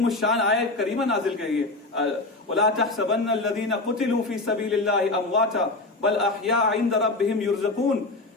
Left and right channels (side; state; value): right; quieter; 3.1 dB